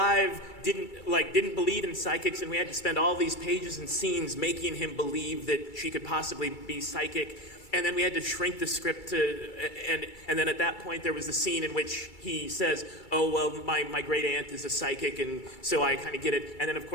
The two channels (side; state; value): right; late; 2.3 ms